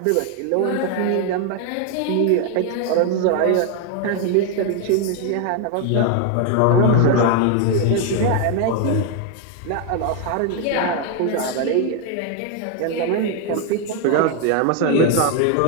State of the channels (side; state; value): both; different; correlation 0.01